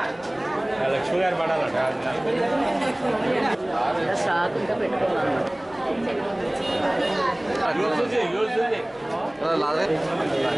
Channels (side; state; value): left; noise; hum, 29 dB below the sound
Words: లక్ష్మి గారు పడాలట